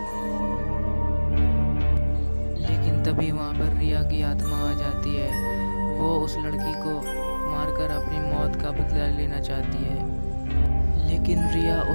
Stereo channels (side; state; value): both; inverted; correlation -1.00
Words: तभी वहाँ पर रिया की आत्मा आ जाती है। वो उस लड़की को मारकर अपनी मौत का बदला लेना चाहती है, लेकिन रिया